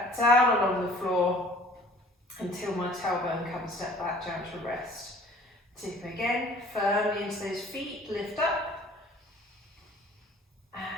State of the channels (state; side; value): normal; both; correlation 0.51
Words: down along the floor until my tailbone comes back down to rest. Tip again, firmly into those feet, lift up.